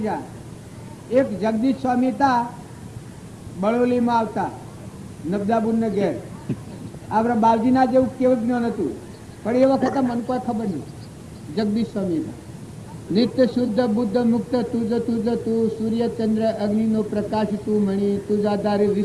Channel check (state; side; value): identical; both; correlation 1.00